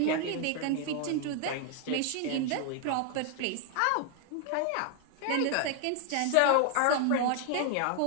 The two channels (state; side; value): different; both; correlation 0.00